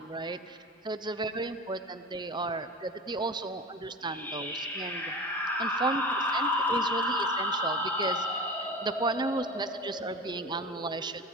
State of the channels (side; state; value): both; normal; correlation 0.32